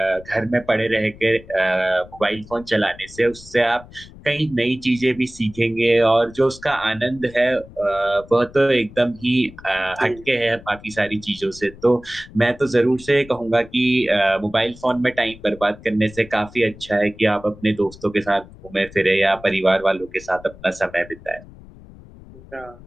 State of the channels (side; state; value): left; noise; rumble, 20 dB below the sound